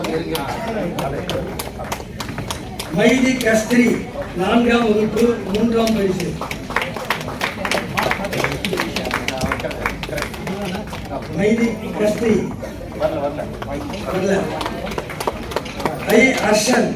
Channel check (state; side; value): identical; both; correlation 1.00